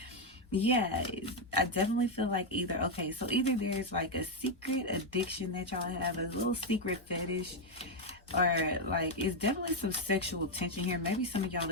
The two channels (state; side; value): normal; both; correlation 0.03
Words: yeah, I definitely feel like either there's like a secret addiction that y'all have, a little secret fetish, or like it's definitely some sexual tension here. Maybe some of y'all